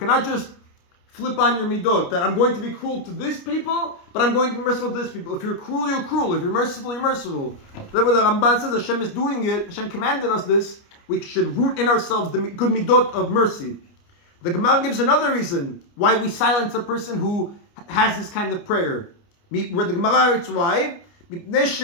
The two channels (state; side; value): late; right; 29 ms